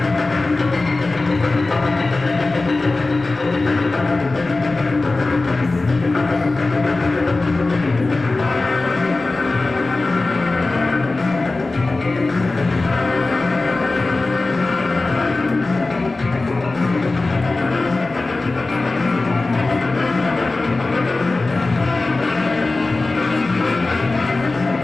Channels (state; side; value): quieter; right; 3.3 dB